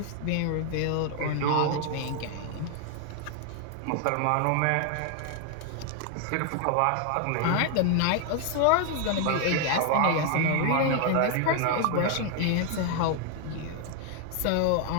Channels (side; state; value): both; different; correlation 0.00